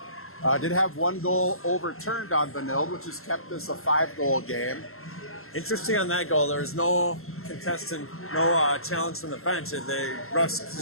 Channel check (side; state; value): right; late; 0.62 ms